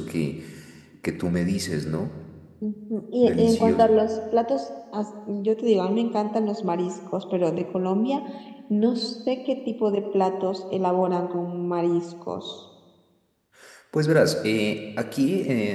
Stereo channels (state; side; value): identical; both; correlation 1.00